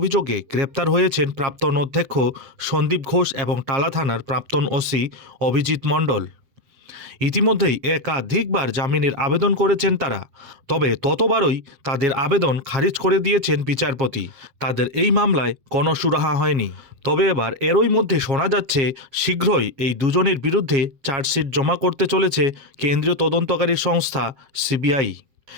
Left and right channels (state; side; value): late; left; 7.8 ms